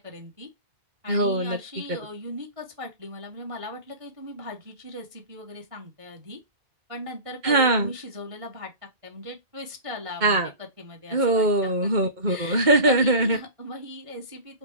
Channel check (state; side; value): late; left; 2.1 ms